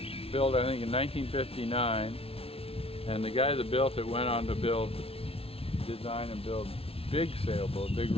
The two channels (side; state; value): right; late; 0.27 ms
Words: built, I think, in 1959, and the guy that built it went on to design and build big sailboats, big